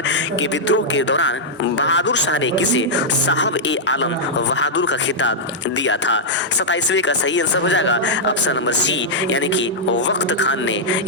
के विद्रोह के दौरान बहादुर शाह ने किसे साहब ए आलम बहादुर का खिताब दिया था? 27वें का सही आंसर हो जाएगा ऑप्शन नंबर सी, यानी कि वक्त खान ने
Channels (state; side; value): normal; both; correlation -0.08